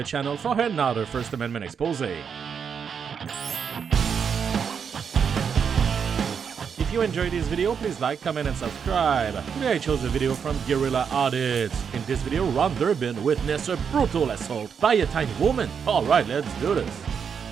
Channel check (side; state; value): left; quieter; 6.9 dB